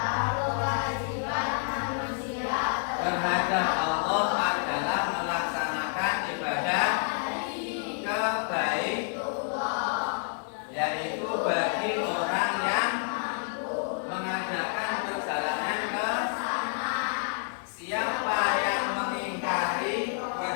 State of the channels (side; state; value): right; silent; 59 dB below the other